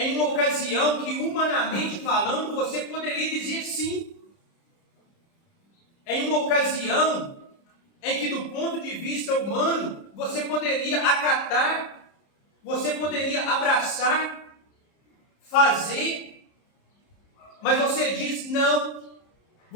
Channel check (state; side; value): late; right; 30 ms